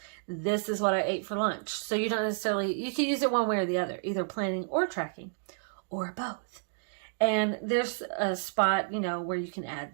This is what I ate for lunch. So you don't necessarily, you can use it one way or the other, either planning or tracking or both. And there's a spot, where you can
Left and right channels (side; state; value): left; silent; digital silence